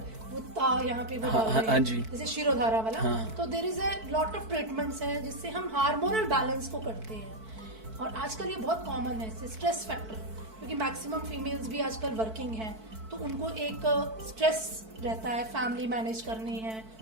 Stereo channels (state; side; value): late; left; 4.5 ms